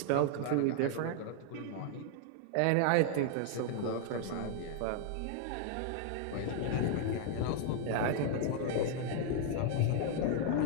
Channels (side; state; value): both; different; correlation 0.00